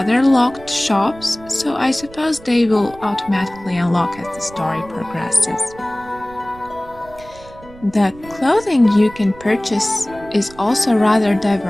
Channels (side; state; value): right; noise; rumble, 20 dB below the sound